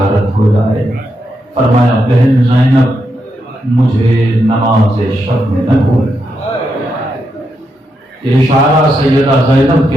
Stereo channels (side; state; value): both; normal; correlation 0.83